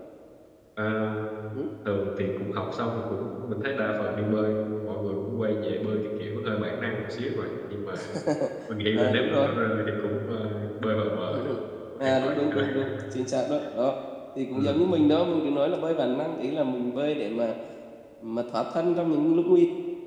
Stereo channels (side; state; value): both; identical; correlation 1.00